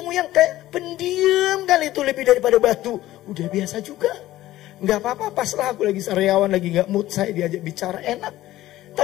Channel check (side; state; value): right; quieter; 15.3 dB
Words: yang kayak pendiam kali itu lebih daripada batu, udah biasa juga. Nggak apa-apa, paslah aku lagi sariawan, lagi nggak mood, saya diajak bicara enak.